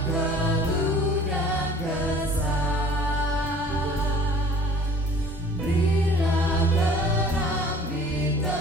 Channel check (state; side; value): normal; both; correlation 0.50